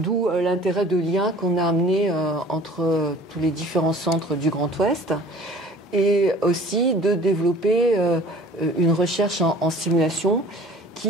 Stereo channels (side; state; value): both; normal; correlation 0.48